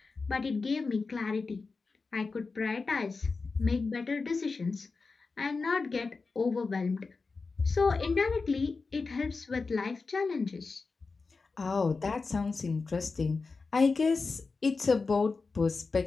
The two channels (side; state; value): right; quieter; 4.3 dB